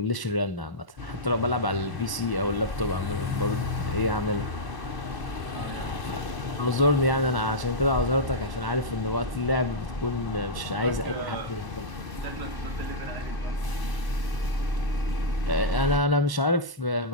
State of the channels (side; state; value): left; late; 1.1 ms